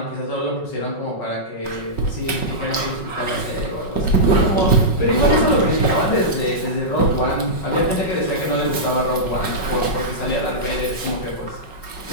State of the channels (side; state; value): right; late; 5.4 ms